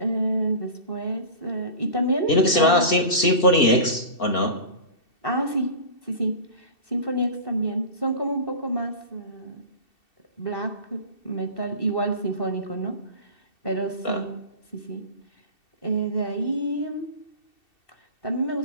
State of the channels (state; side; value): late; right; 2.7 ms